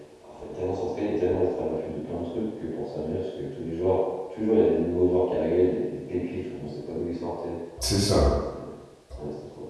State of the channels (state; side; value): identical; both; correlation 1.00